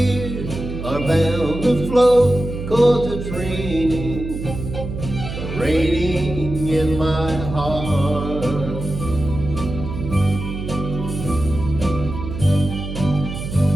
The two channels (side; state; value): right; noise; hum, 7 dB below the sound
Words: are bound to flow, 'cause it's raining, raining in my heart.